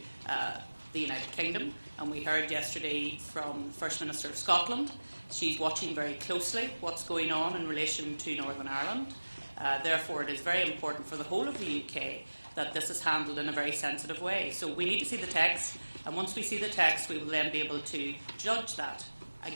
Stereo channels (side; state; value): both; inverted; correlation -1.00